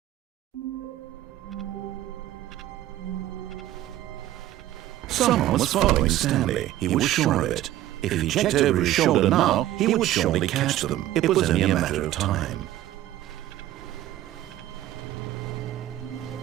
Someone was following Stanley. He was sure of it. If he checked over his shoulder now, he would surely catch them. It was only a matter of time.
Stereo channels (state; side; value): quieter; left; 14.1 dB